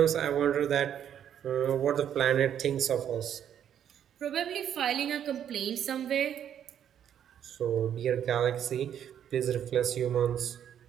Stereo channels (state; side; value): quieter; left; 9.5 dB